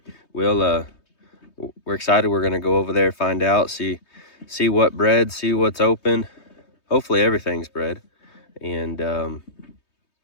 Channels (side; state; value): right; late; 3.2 ms